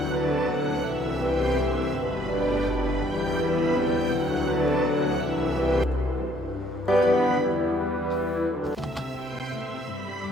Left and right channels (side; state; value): both; normal; correlation 0.65